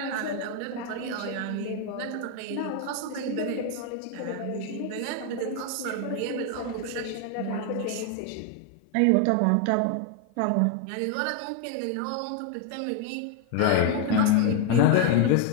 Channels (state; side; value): different; both; correlation 0.00